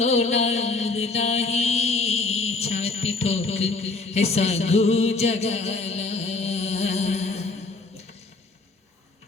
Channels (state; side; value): quieter; right; 3.7 dB